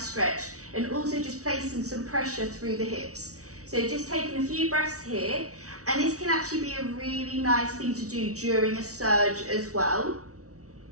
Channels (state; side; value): late; left; 0.65 ms